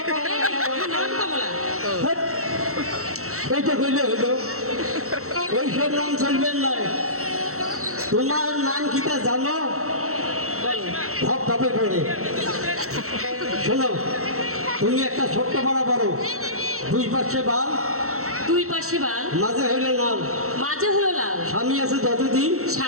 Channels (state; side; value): late; left; 0.64 ms